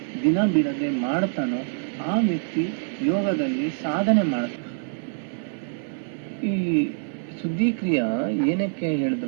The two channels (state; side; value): silent; left; digital silence